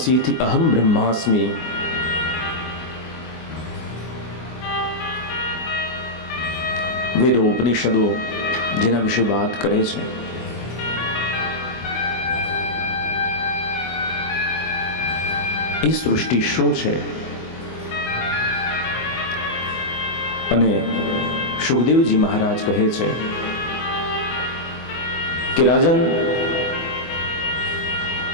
અહમ બ્રહ્માસ્મિ, વેદો ઉપનિષદો જેના વિશે વાત કરે છે, એ સૃષ્ટિ શું છે? અને સુખદેવજી મહારાજ કહે છે કે રાજન,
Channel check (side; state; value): right; late; 24 ms